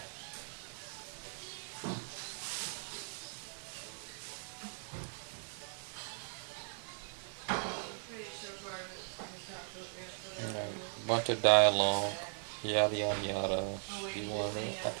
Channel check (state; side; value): silent; left; 52 dB below the other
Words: Bunch of dialogue, yada yada yada. She wanted, I